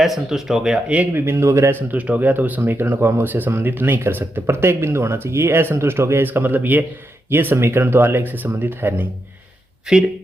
हो गया तो उस समीकरण को हम उससे संबंधित नहीं कर सकते, प्रत्येक बिंदु होना चाहिए। ये असंतुष्ट हो गया, इसका मतलब ये समीकरण तो आलेख से संबंधित है नहीं।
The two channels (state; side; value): normal; both; correlation 0.84